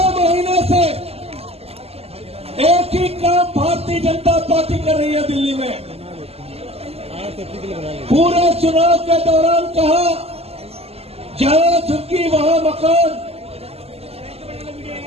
महीने से एक ही काम भारतीय जनता पार्टी कर रही है दिल्ली में। पूरे चुनाव के दौरान कहा, जहां झुकी वहां मकान।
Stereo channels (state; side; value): late; left; 0.29 ms